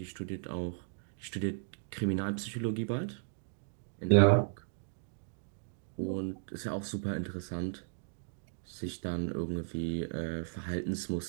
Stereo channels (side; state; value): left; silent; digital silence